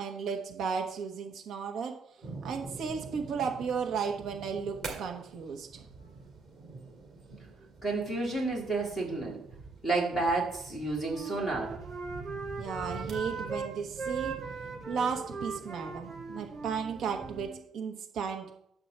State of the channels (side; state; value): left; quieter; 4.2 dB